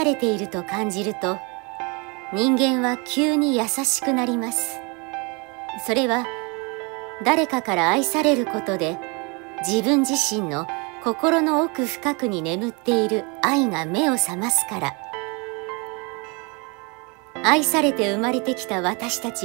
れていると感じると、人間は急に優しくなります。それは誰かから愛されることで、自分自身の心の奥深くに眠っている愛が目を覚ますから。愛されて生まれてきた私た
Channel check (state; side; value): quieter; left; 30.4 dB